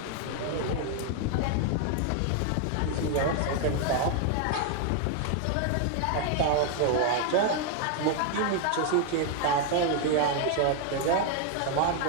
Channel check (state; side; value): different; both; correlation 0.00